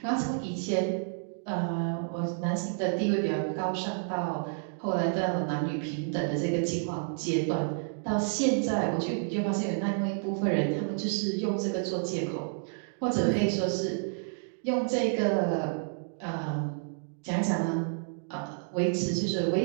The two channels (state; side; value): silent; left; digital silence